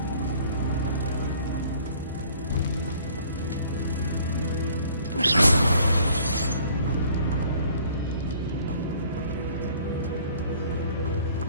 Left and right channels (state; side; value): inverted; both; correlation -0.56